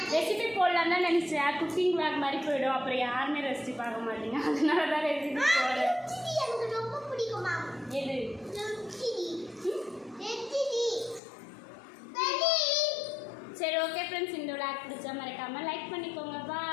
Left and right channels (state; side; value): drops out; right; at 11.2 s